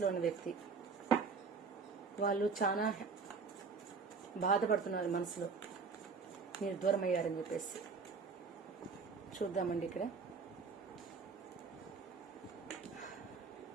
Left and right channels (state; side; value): quieter; left; 5.0 dB